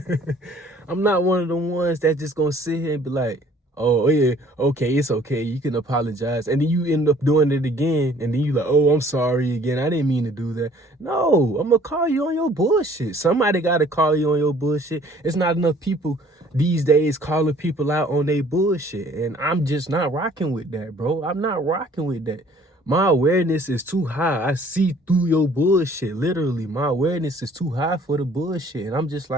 I'm not one of them ones that just gonna sit here and be like, oh yeah, okay, it's okay, you can apologize. And then you end up doing it again, and then you like, oh, I'm sorry again, I didn't mean to do that. No, I'm gonna call you on your bullshit. Somebody gotta call you on your bullshit. It's not enough people these days calling people out on their bullshit. And I'm just not rocking with that, bro. I'm not rocking with that. My awareness is too high. I see through your bullshit. Literally, my awareness is too high for the bullshit. And I'm just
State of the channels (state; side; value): normal; both; correlation 0.55